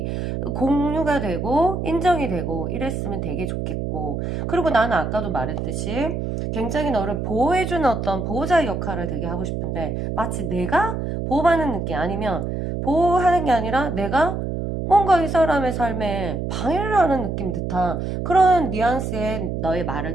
공유가 되고 인정이 되고 이랬으면 되게 좋겠고, 그리고 나는 아까도 말했듯이 굉장히 너를 보호해주는 어떤 보호자의 역할을 되게 하고 싶은데 마치 내가 보호받는 느낌, 아니면 보호하는 게 아니라 내가 뭔가 이 사람의 삶에 방해를 하는 느낌 듯한 그런 뉘앙스의 너의 말을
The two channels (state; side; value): noise; right; hum, 3 dB below the sound